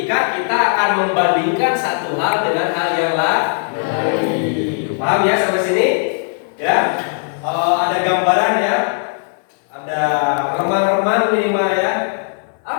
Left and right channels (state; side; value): silent; right; 65 dB below the other